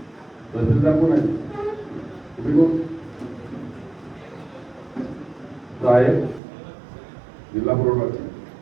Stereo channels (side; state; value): left; drops out; at 6.4 s